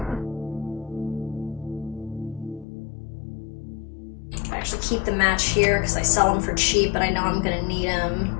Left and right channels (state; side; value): drops out; right; at 2.7 s